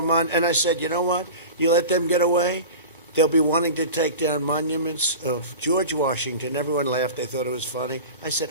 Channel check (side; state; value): both; inverted; correlation -0.33